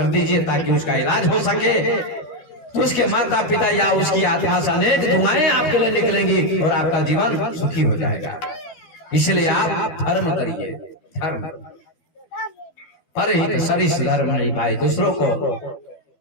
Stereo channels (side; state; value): right; late; 12 ms